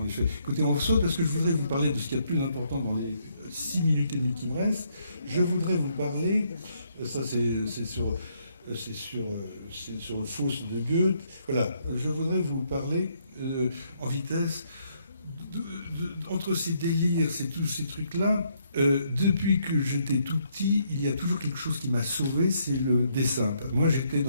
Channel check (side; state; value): both; inverted; correlation -0.72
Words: ai fait. Écoutez, on saute parce que je voudrais vous parler de ce qu'il y a de plus important dans les 6 minutes et demie qui me restent. Je voudrais vous parler, ça c'est sur le Faust de Goethe, voilà, je voudrais vous parler en vitesse entre ces délires, tous ces trucs-là. Depuis que j'étais tout petit, il y a toujours quelque chose qui m'a sauvé, c'est le dessin. Moi, j'étais